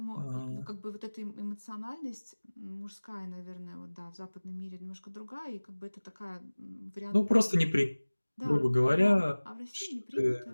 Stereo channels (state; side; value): inverted; both; correlation -1.00